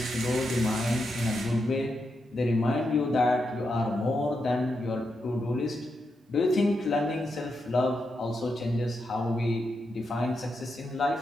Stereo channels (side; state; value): both; normal; correlation 0.85